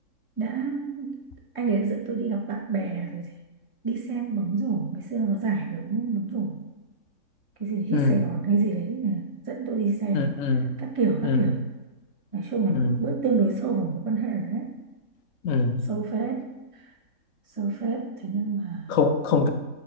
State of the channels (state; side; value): late; right; 3.9 ms